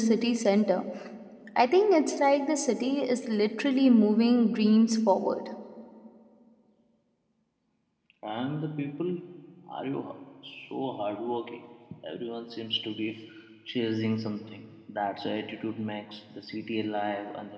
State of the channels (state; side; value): identical; both; correlation 1.00